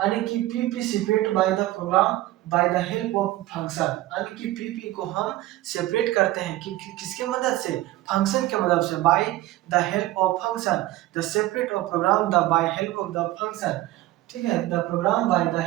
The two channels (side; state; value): left; quieter; 16.4 dB